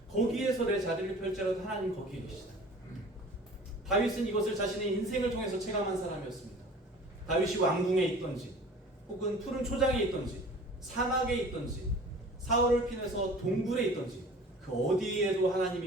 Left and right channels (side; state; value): both; normal; correlation 0.44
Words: 거기에서 내 자리를 펼지라도 하나님 거기에 계시다. 다윗은 이것을 자신의 인생을 통해서 체감한 사람이었습니다. 다윗이 왕궁에 있던지 혹은 푸른 초장에 있던지 사막에 있던지 사울을 피해서 동굴에 있던지 그 어디에도